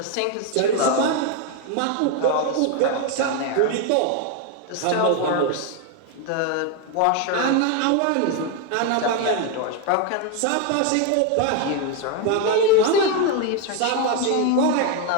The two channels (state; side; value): different; both; correlation 0.01